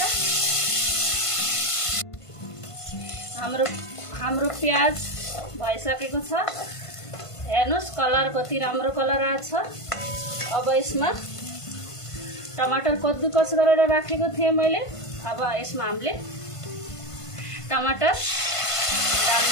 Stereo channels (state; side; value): late; right; 1.5 ms